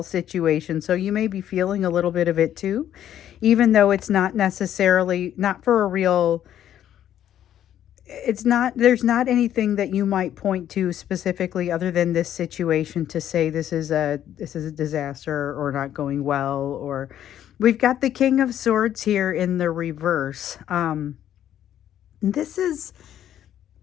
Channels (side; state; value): right; quieter; 10.9 dB